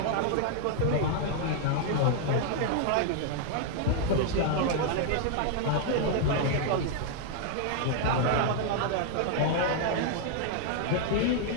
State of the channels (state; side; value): different; both; correlation 0.00